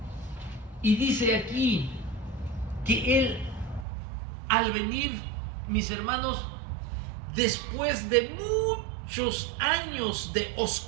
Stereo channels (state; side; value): drops out; left; at 3.9 s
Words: Y dice aquí que Él, al venir, mis hermanos, después de muchos años de